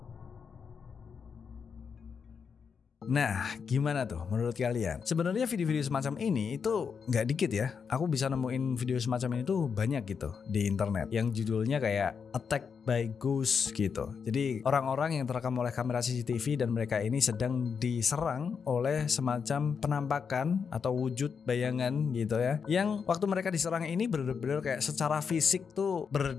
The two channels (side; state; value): right; quieter; 6.2 dB